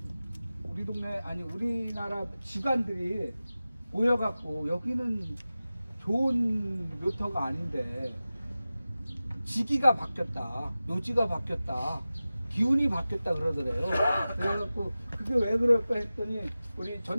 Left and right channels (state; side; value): inverted; both; correlation -0.96